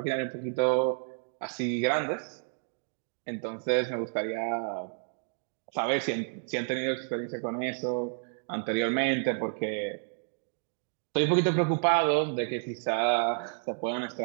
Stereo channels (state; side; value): silent; left; 57 dB below the other